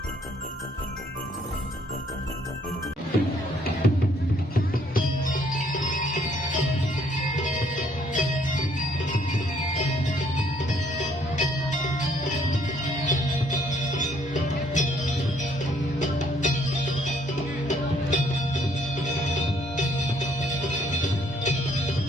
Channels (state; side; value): normal; both; correlation 0.65